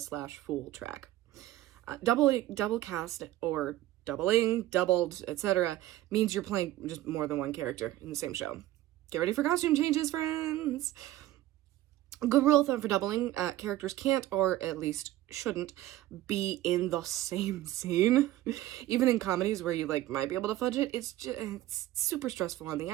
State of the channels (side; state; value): left; quieter; 15.0 dB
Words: Fool track. Double cast or doubling, doubled, etc. means you're playing just more than one character in the same show. Get ready for costume changes, friends! A good rule of thumb for doubling, characters can't, or at least shouldn't, be in the same scene. Even in comedies where you like might be able to fudge it, it's super stressful on the